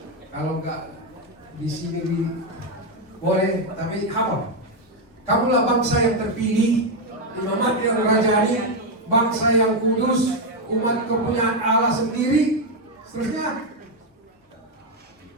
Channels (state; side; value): normal; both; correlation 0.04